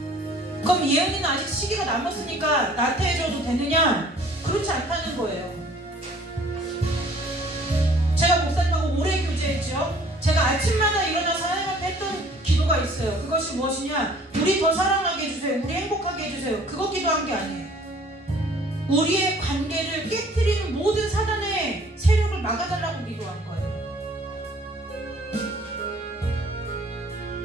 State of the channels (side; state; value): both; normal; correlation 0.54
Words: 그럼 예언이는 아직 시기가 남았으니까 나태해져도 되느냐? 그렇지 않다는 거예요. 제가 목사님하고 오래 교제했죠. 제가 아침마다 일어나서 하나님 앞에 했던 기도가 있어요. 그것이 무엇이냐? 우리 더 사랑하게 해주세요. 우리 행복하게 해주세요. 그거 기도한 게 아니에요. 우리의 관계를 깨트리는 모든 사단의 세력을 막아달라고 기도한 거예요.